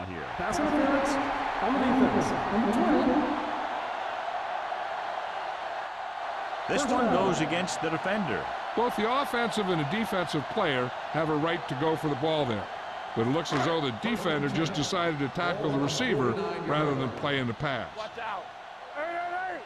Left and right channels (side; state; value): both; identical; correlation 1.00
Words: here? Pass interference on the defense. Number 20. This one goes against the defender. Both the offensive and the defensive player have a right to go for the ball there. But it looks as though the defender just decided to tackle the receiver rather than playing the pass. Watch out. Hey.